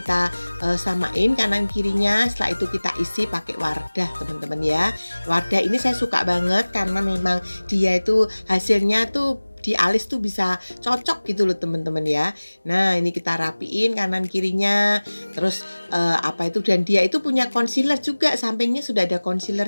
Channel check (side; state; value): both; inverted; correlation -1.00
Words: samain kanan kirinya, setelah itu kita isi pakai Wardah teman-teman ya. Wardah ini saya suka banget karena memang dia itu hasilnya tuh di alis tuh bisa cocok gitu loh teman-teman ya. Nah ini kita rapiin kanan kirinya, terus apa itu, dan dia itu punya concealer juga, sampingnya sudah ada